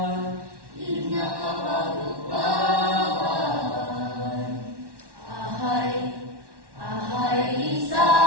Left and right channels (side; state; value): left; late; 1.1 ms